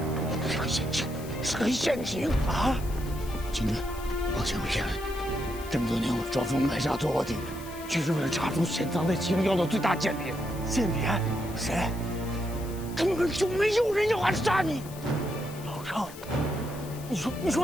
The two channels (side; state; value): left; noise; hiss, 17 dB below the sound